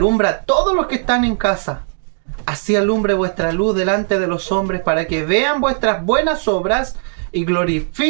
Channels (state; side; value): silent; left; 64 dB below the other